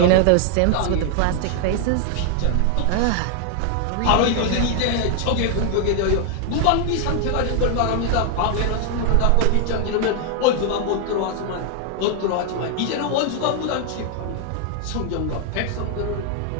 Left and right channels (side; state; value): both; different; correlation 0.00